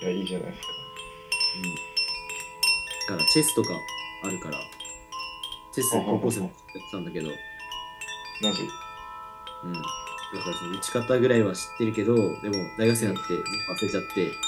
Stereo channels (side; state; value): both; identical; correlation 1.00